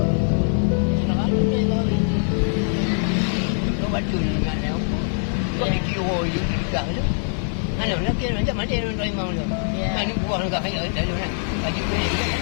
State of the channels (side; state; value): right; silent; 64 dB below the other